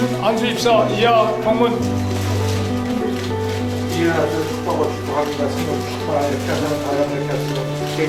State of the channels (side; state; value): both; identical; correlation 1.00